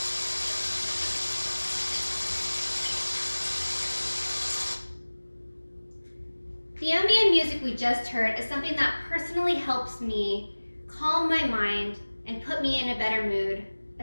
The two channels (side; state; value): both; inverted; correlation -1.00